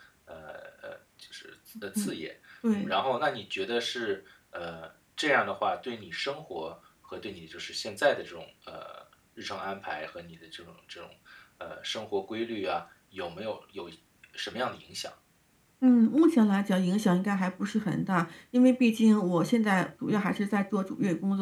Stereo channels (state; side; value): identical; both; correlation 1.00